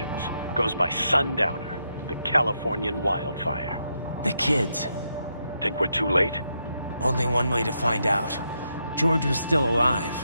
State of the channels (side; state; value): both; inverted; correlation -0.81